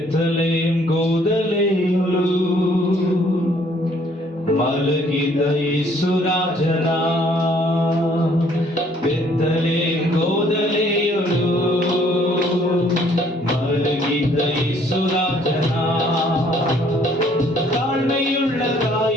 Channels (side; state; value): both; normal; correlation 0.62